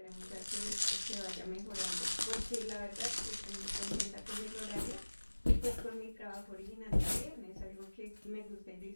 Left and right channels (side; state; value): both; inverted; correlation -1.00